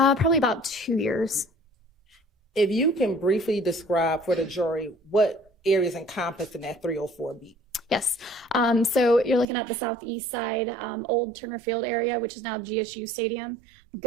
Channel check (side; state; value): left; drops out; at 9.5 s